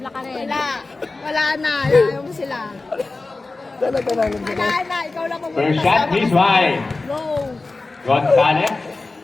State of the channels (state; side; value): quieter; right; 3.5 dB